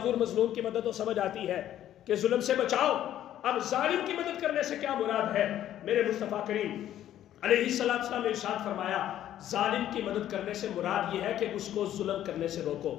مظلوم کی مدد تو سمجھ آتی ہے کہ ظلم سے بچاؤ، اب ظالم کی مدد کرنے سے کیا مراد ہے؟ میرے مصطفیٰ کریم علیہ السلام نے ارشاد فرمایا ظالم کی مدد کرنے سے مراد یہ ہے کہ اس کو ظلم کرنے سے روکو،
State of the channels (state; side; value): quieter; right; 11.9 dB